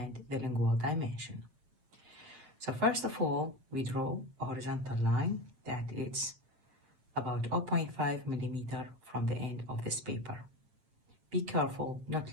the lingual dimension. So first of all, we draw a horizontal line that is about 0.5 millimeter from the end of this paper. Be careful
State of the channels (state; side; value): late; left; 8.3 ms